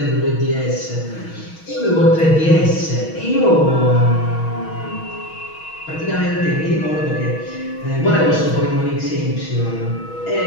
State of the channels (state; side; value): late; right; 6.3 ms